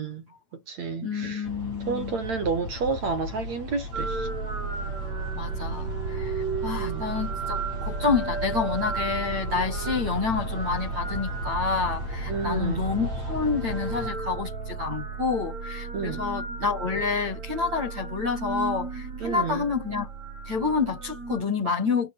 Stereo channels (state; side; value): late; left; 8.9 ms